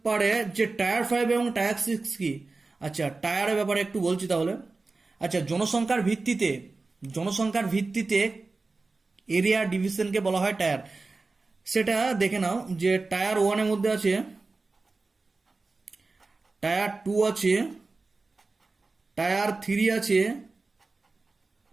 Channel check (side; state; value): left; quieter; 3.7 dB